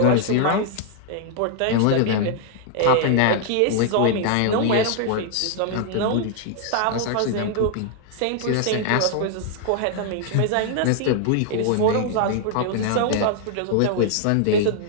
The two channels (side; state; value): both; different; correlation 0.00